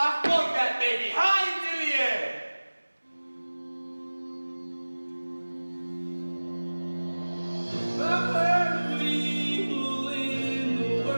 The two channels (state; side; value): inverted; both; correlation -1.00